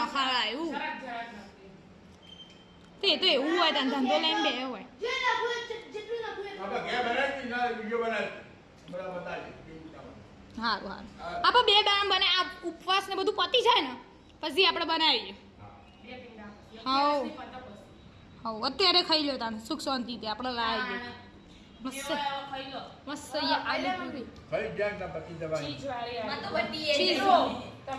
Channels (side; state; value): both; identical; correlation 1.00